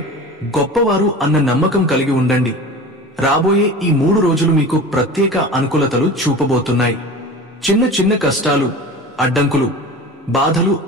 గొప్పవారు అన్న నమ్మకం కలిగి ఉండండి. రాబోయే ఈ 3 రోజులు మీకు ప్రత్యేక అనుకూలతలు చూపబోతున్నాయి. చిన్న చిన్న కష్టాలు, అడ్డంకులు, బాధలు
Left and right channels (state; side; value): normal; both; correlation 0.35